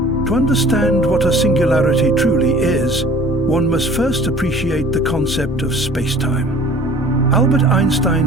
understand what a singularity truly is, one must first appreciate the concept of spacetime. Albert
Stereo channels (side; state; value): both; normal; correlation 0.48